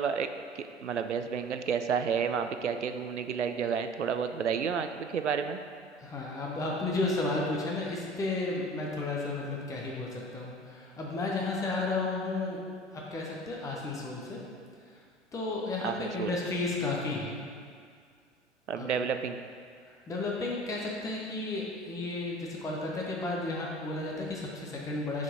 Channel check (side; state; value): both; normal; correlation 0.43